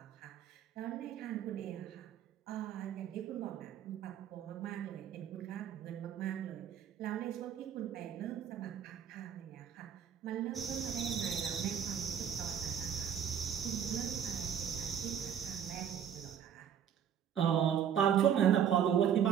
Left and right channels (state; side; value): quieter; left; 8.8 dB